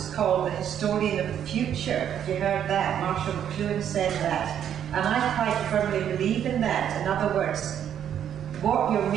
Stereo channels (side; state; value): left; quieter; 9.5 dB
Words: called the historian of the future. Have you heard that? Marshall McLuhan said that. And I quite firmly believe in that. In other words, what you're